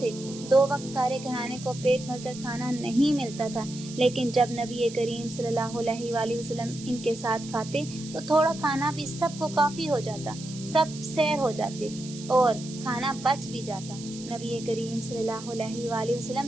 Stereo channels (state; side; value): noise; right; hiss, 14 dB below the sound